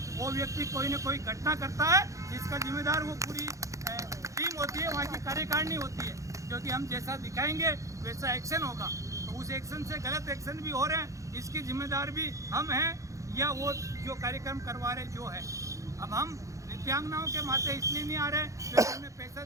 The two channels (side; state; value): left; late; 0.15 ms